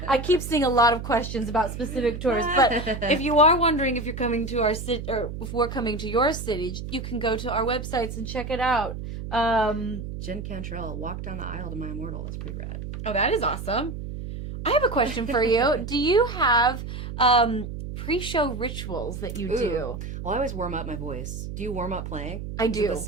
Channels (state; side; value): noise; right; hum, 7 dB below the sound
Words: I keep seeing a lot of questions about specific tours, but if you are wondering if you're coming to our city or if we're coming to your city, you can go to our websites and check it out. Jen Cantrell, Walk Down the Aisle to My Immortal. That's pretty rad. Oh, that is awesome. I have a question for you. Do you have pre-show rituals that you do? Well, I always warm up my voice. Do you warm up playing? I Is it do. the